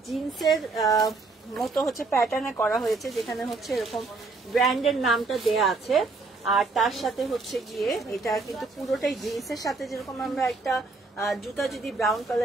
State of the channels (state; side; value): quieter; left; 3.7 dB